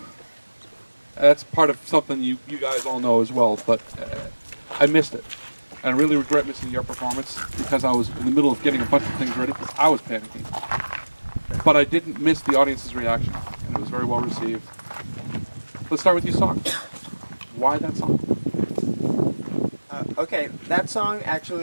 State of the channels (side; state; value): both; inverted; correlation -1.00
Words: That's part of something you guys all know as well, but I missed it. And I really regret missing your performance because I was in the middle of getting a bunch of things ready because I was panicking. But I didn't miss the audience's reaction, and it was very well received. Let's start with your song. Why that song? Okay, that song